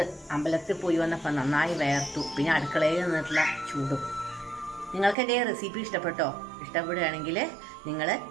അമ്പലത്തിൽ പോയി വന്നപ്പോൾ നന്നായി വേർത്തു. പിന്നെ അടുക്കളയിൽ നിന്നിട്ടുള്ള ചൂടും. നിങ്ങൾക്ക് എൻ്റെ റെസിപ്പി ഇഷ്ടപ്പെട്ടോ? ഇഷ്ടപ്പെടുകയാണെങ്കിൽ നിങ്ങൾ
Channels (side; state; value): left; drops out; at 5.2 s